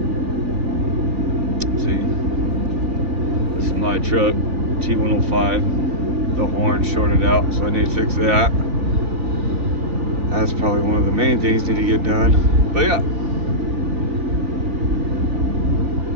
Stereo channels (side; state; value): left; late; 3.5 ms